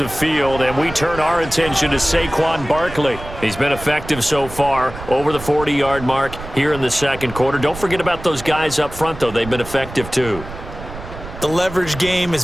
field, and we turn our attention to Saquon Barkley. He's been effective so far, over the 40-yard mark here in the second quarter. Don't forget about those guys up front, though. They've been effective, too. The leverage game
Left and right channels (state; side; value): noise; right; rumble, 12 dB below the sound